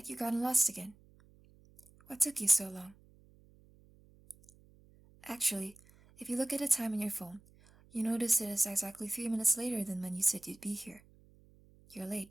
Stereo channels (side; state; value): right; noise; hum, 27 dB below the sound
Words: you'd gotten lost again. What took you so long? Actually, if you look at the time on your phone, you notice it is exactly 3 minutes later than when you said you'd be here. You're